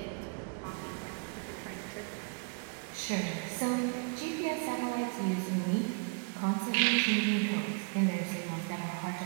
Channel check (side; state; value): left; quieter; 36.6 dB